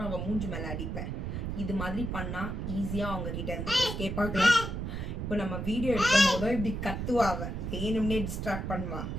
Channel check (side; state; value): right; noise; rumble, 4 dB below the sound